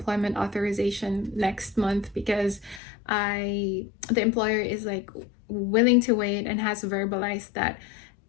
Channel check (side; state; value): right; drops out; at 2.8 s